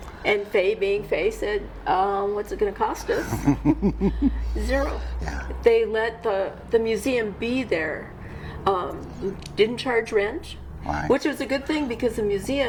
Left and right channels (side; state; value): both; identical; correlation 1.00